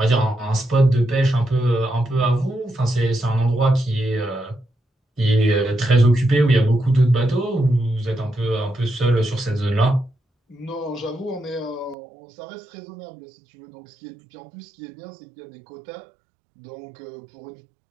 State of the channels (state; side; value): drops out; left; at 12.0 s